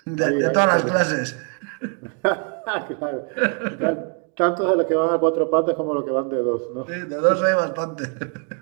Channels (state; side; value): quieter; left; 39.5 dB